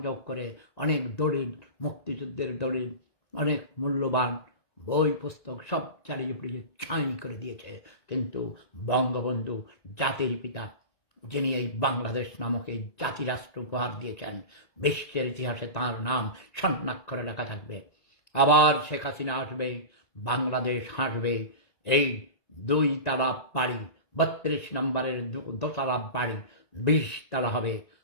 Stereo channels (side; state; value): right; late; 1.9 ms